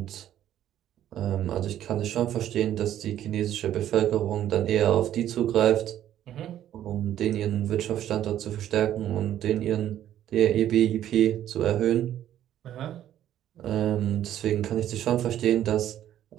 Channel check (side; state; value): left; quieter; 11.6 dB